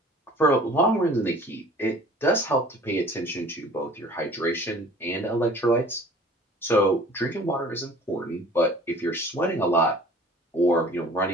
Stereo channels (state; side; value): normal; both; correlation 0.48